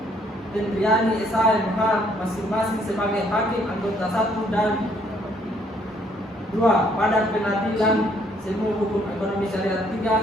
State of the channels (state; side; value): normal; both; correlation 0.66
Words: Tendriani SHMA masing-masing sebagai Hakim anggota 1 dan 2 pada Pengadilan Semu Hukum Ekonomi Syariah